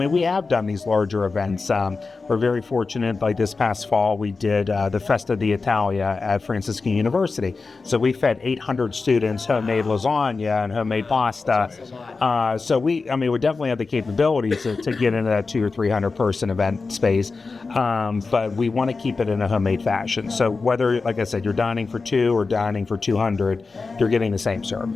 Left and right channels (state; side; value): quieter; right; 4.2 dB